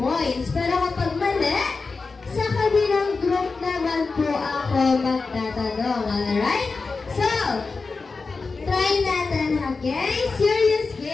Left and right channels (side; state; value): right; quieter; 4.2 dB